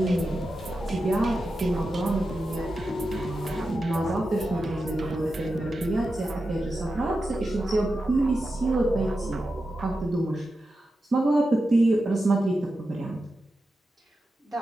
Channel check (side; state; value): both; normal; correlation 0.90